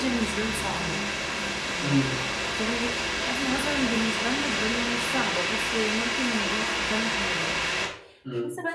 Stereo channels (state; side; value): identical; both; correlation 1.00